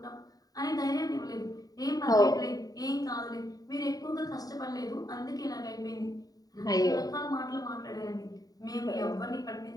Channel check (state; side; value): late; right; 0.18 ms